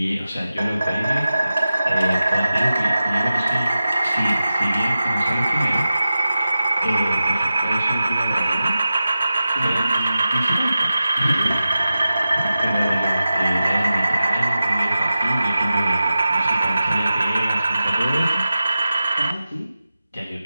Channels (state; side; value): inverted; both; correlation -0.93